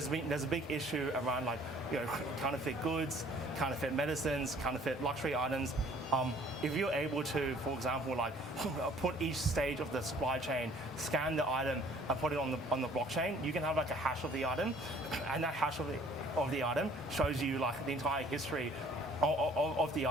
a big issue around like, you know, counterfeit goods, counterfeit medicines, counterfeit luxury items. If you're able to, for example, like put each stage of the supply chain, scan the item, and put it on the blockchain, you can have like a hash of the item, and that hash of the item shows you like the entire history of the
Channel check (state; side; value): normal; both; correlation 0.56